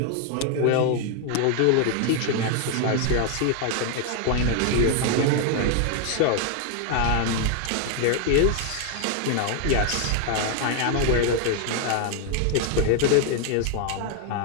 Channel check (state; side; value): different; both; correlation 0.01